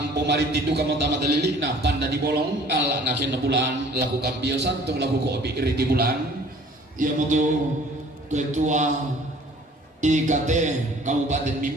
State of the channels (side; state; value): both; normal; correlation 0.52